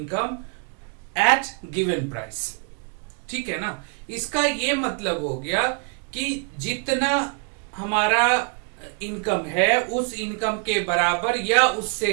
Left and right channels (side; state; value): left; quieter; 37.7 dB